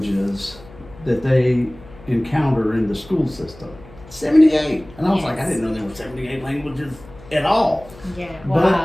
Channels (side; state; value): left; noise; hum, 21 dB below the sound